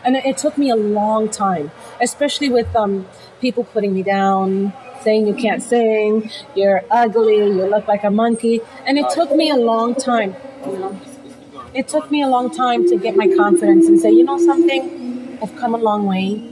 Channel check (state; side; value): identical; both; correlation 1.00